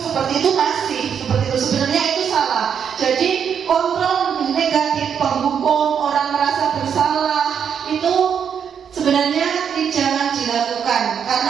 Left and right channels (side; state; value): left; quieter; 7.7 dB